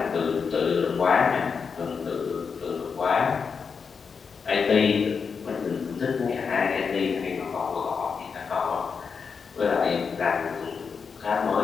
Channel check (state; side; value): quieter; right; 5.7 dB